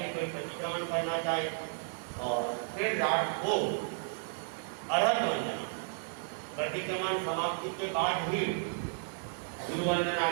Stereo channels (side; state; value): left; silent; digital silence